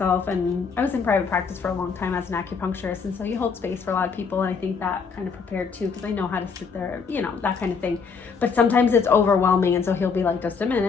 and I was in private practice for a long time as an acupuncturist, and so you hold space for a lot of people, and I think that kind of prepared too, because I know how to sit there, you know, that kind of thing. But sometimes it's overwhelming, and so he'll be like, just a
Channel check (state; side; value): quieter; right; 5.5 dB